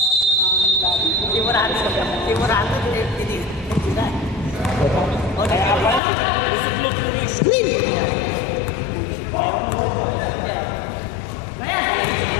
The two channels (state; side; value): drops out; right; at 6.0 s